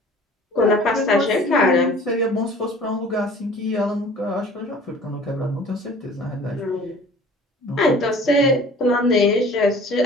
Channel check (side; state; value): both; normal; correlation 0.47